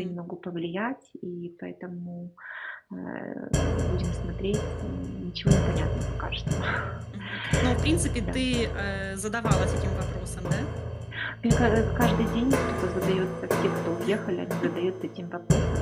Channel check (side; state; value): both; identical; correlation 1.00